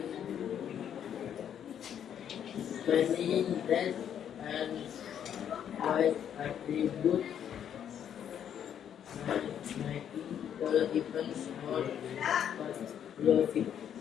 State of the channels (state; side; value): quieter; right; 9.2 dB